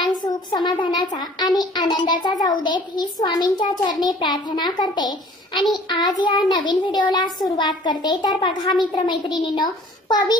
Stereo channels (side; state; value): both; normal; correlation 0.51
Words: सुख समाधानाचा आणि आनंदाचा जाऊ देत ही स्वामींच्या चरणी प्रार्थना करते आणि आज या नवीन व्हिडिओला सुरुवात करते। तर बघा मित्र मैत्रिणींनो,